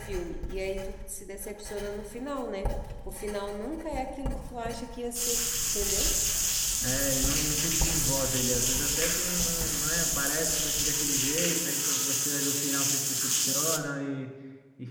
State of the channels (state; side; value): identical; both; correlation 1.00